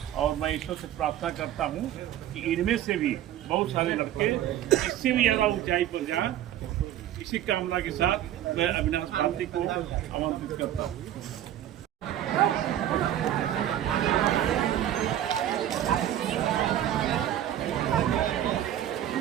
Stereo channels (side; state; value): left; quieter; 11.8 dB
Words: और मैं ईश्वर से प्रार्थना करता हूँ कि इनमें से भी बहुत सारे लड़के इससे भी ज़्यादा ऊंचाई पर जाएं। इसी कामना के साथ मैं अविनाश भारती को आमंत्रित करता हूँ।